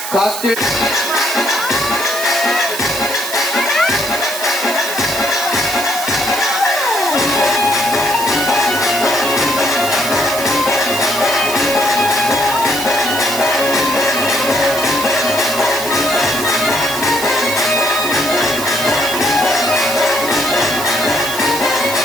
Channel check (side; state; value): right; noise; hiss, 7 dB below the sound